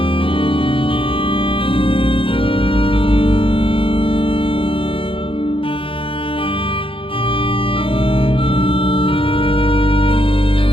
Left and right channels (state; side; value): late; right; 0.26 ms